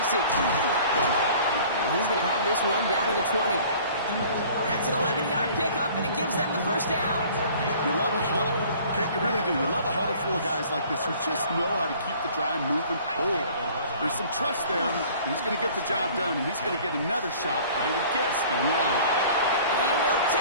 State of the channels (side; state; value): both; inverted; correlation -0.50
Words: And he's going to have this one down to the 20. That's an 11-yard pickup, and it gives them the first down. You love a huddle. Okay, you really do. You love a huddle full of guys like this who just know how to keep the drive moving forward. There's some trust there. He's going to get the job done, and he's going to get another shot, I would guess, down the line. He will